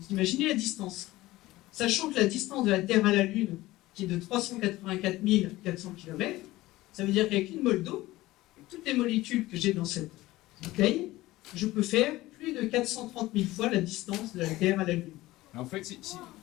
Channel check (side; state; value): right; quieter; 17.8 dB